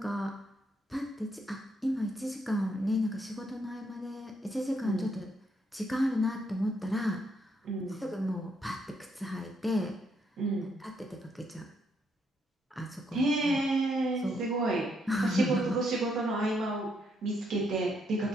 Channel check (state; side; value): normal; both; correlation 0.74